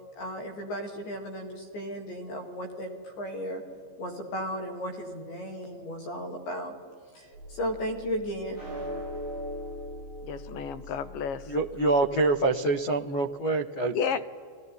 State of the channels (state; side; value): late; right; 14 ms